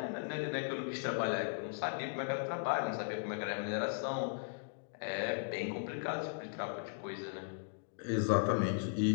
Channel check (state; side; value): silent; right; digital silence